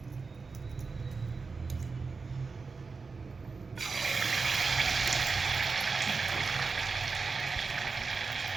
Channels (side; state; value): left; quieter; 4.5 dB